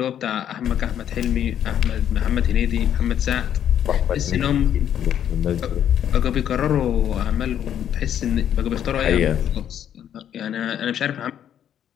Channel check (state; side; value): quieter; right; 9.9 dB